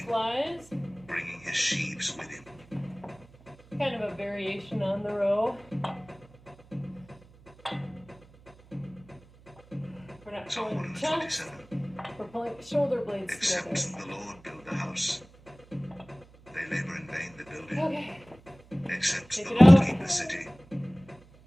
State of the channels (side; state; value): right; noise; hum, 25 dB below the sound